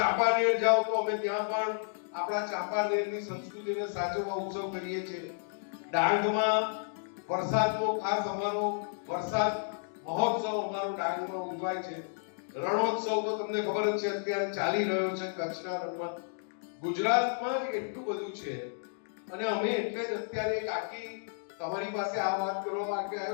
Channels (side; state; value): right; silent; digital silence